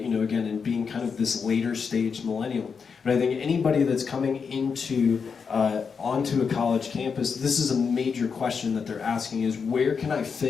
in being kind of this later stage millennial. But I think anybody that's coming onto a college campus, this is a major question that they're asking is, where can I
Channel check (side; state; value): right; quieter; 5.9 dB